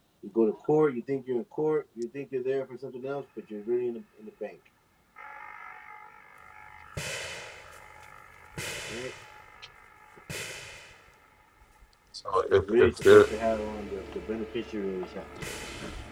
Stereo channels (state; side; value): identical; both; correlation 1.00